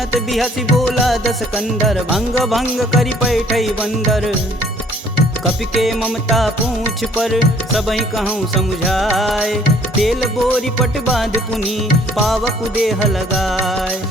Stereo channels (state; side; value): normal; both; correlation 0.58